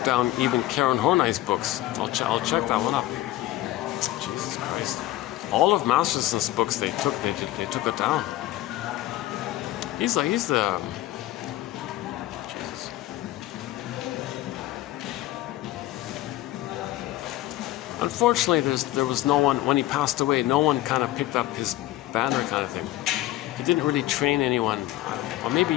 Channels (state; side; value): quieter; right; 15.9 dB